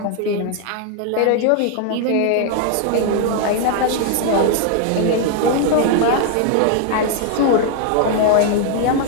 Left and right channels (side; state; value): both; different; correlation 0.00